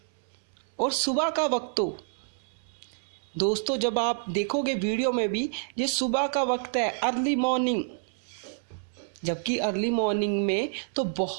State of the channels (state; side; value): silent; left; 59 dB below the other